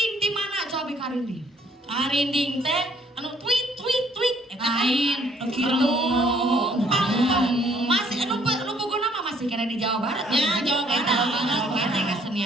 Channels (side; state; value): both; normal; correlation 0.63